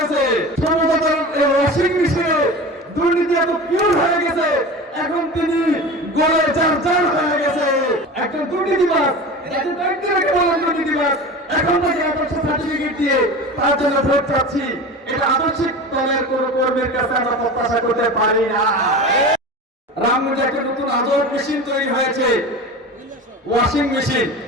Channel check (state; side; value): normal; both; correlation 0.32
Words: সমতার ওয়াশিং মেশিনে দুর্নীতি এত পিওর হয়ে গেছে, এখন তিনি গলে চার হয়ে গেছে। একজন দুর্নীতিবাজ, যাকে ব্যক্তিকে বলেন দুর্নীতিবাজ, এখন তাকে আদর্শ সার্টিফিকেট দিয়ে তার জন্য ভোট চাচ্ছি। এটা আদর্শিক দলের কোন কর্মীর কাছে আমরা প্রত্যাশা করতে পারি না। রামগঞ্জে একটা নতুন আদর মেশিন তৈরি হয়েছে, ওয়াশিং মেশিন,